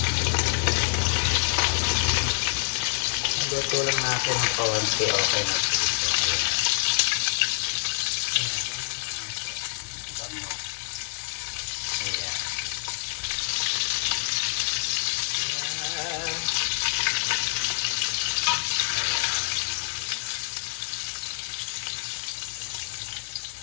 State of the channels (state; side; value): silent; right; digital silence